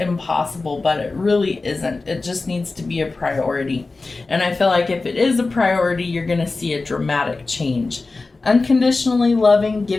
but it really isn't. It just needs to be a priority. And I feel like if it is a priority, you're going to see a dramatic change. Unconditionally loving,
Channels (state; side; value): quieter; right; 3.6 dB